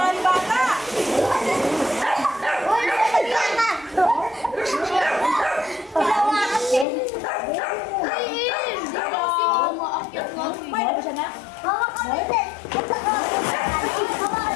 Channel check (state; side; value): drops out; right; at 6.9 s